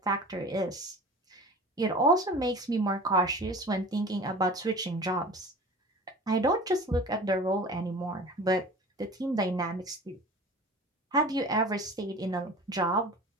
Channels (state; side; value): normal; both; correlation 0.39